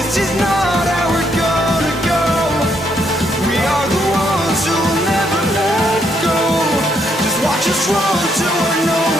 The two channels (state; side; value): normal; both; correlation 0.75